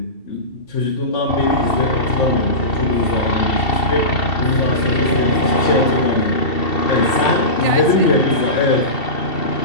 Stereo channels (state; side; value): late; right; 2.7 ms